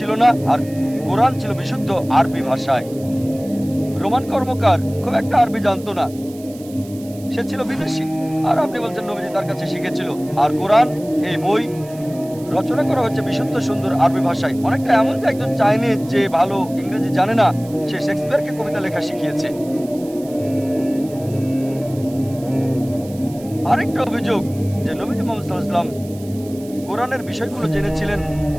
না, আর কোরআন ছিল বিশুদ্ধ আরবি ভাষায়। রোমান কর্মকার খুব একটা আরবি জানতো না, সে ছিল বিদেশী, আর আপনি বলছেন নবীজি তার কাছে শিখেছিল। আর কোরআন এই বই রচনা করা হচ্ছে বিশুদ্ধ সুন্দর আরবি ভাষায়। অনেকটা এমন যে একজন চাইনিজ যে ভালো ইংরেজি জানে না, সে শেক্সপিয়ারকে কবিতা লেখা শিখিয়েছে। আরেকটা অভিযোগ যে নবীজি মুহাম্মদ সাল্লাল্লাহু আলাইহি ওয়াসাল্লাম কোরআনের বিষয়গুলো জেনেছিলেন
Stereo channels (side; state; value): right; noise; hiss, 21 dB below the sound